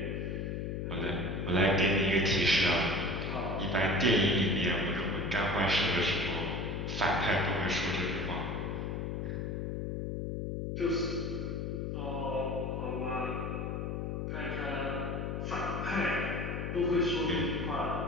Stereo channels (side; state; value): left; noise; hum, 3 dB below the sound